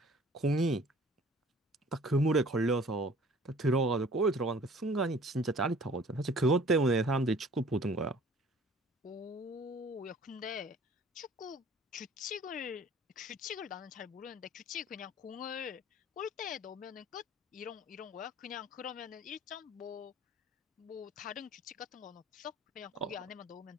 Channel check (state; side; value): normal; both; correlation 0.51